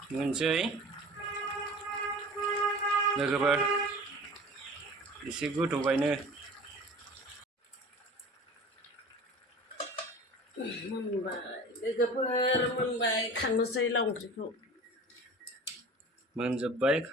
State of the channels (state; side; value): normal; both; correlation 0.40